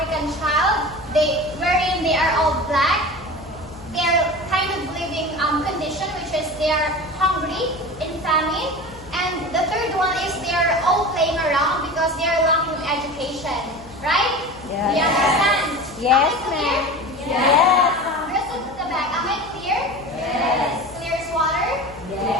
child, wherein they are all black. They're kind of living condition, which is they are hungry, in famine, and the third one is they are all playing around because they are lacking education, right? Yes. Do you understand? Yes, Am I clear? ma'am. Yes. Girls at the back, am I clear?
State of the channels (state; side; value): noise; left; hum, 20 dB below the sound